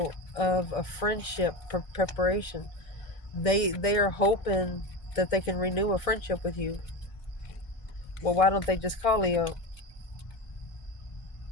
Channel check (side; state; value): right; late; 1.6 ms